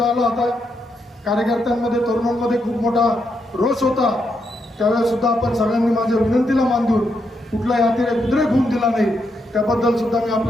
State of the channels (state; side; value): normal; both; correlation 0.81